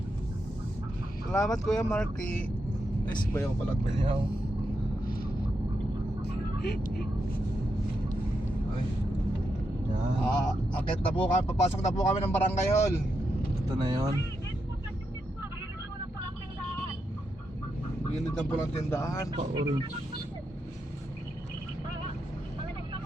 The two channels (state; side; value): normal; both; correlation 0.84